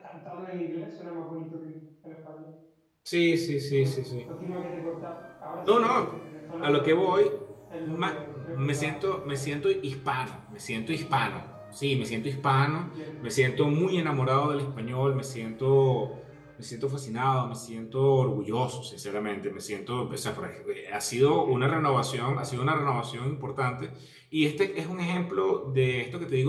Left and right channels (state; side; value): identical; both; correlation 1.00